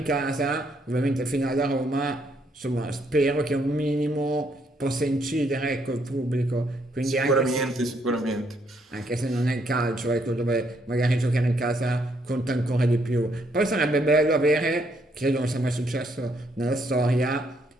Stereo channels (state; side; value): normal; both; correlation 0.72